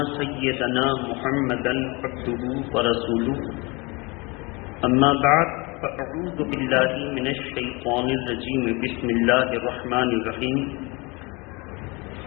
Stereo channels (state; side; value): quieter; right; 26.8 dB